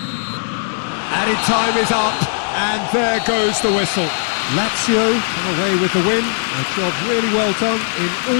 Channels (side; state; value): right; silent; digital silence